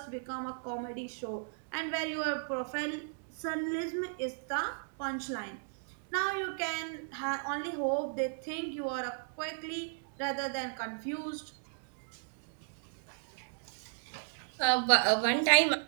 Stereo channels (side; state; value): left; silent; digital silence